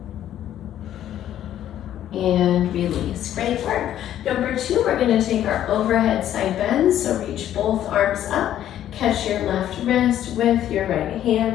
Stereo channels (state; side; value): quieter; right; 11.5 dB